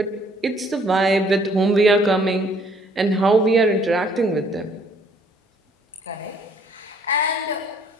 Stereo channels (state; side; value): normal; both; correlation 0.62